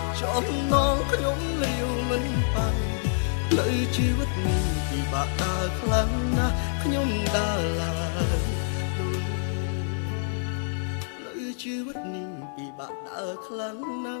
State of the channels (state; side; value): silent; right; 56 dB below the other